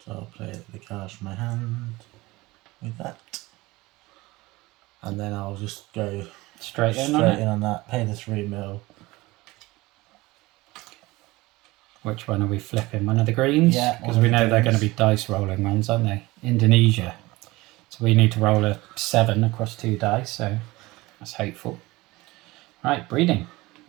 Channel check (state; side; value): quieter; left; 20.7 dB